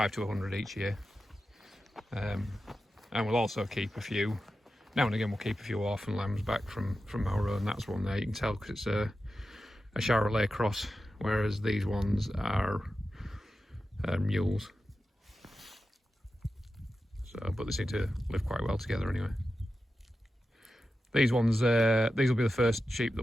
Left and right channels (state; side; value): normal; both; correlation 0.91